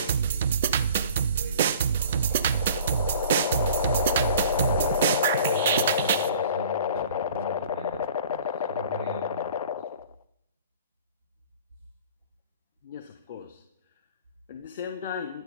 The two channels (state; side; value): inverted; both; correlation -0.48